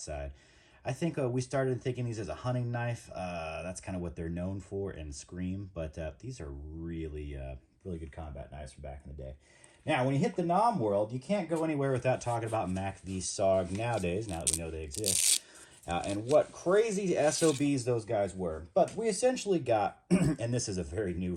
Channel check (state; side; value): identical; both; correlation 1.00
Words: I think we started thinking these as a hunting knife. That's kind of what they're known for in Scream, but these are really, really good combat knives from back in the day. Now, when you hit the Nam world, you can't go anywhere without talking about MACV SOG nowadays, now that we know they exist. And what crazy SOBs those guys were. But we essentially got, and this is a very new